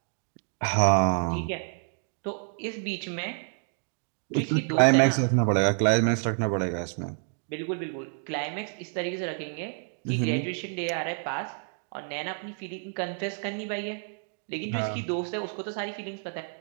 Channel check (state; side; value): silent; left; 58 dB below the other